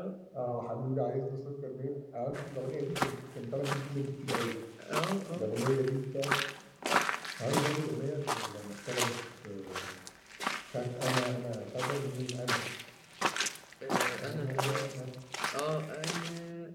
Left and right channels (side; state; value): both; identical; correlation 1.00